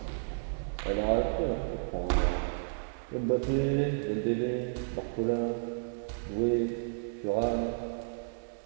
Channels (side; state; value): left; silent; digital silence